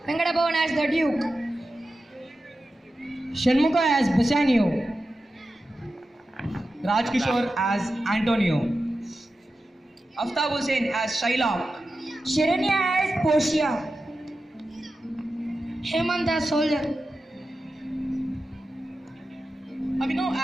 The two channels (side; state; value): both; normal; correlation 0.92